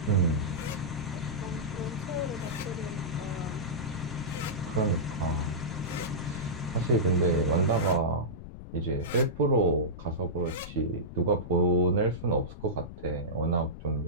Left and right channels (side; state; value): left; noise; rumble, 12 dB below the sound